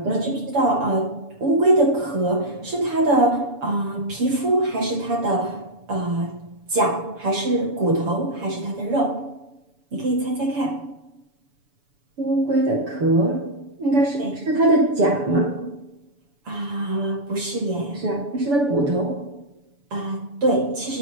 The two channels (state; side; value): late; left; 7.0 ms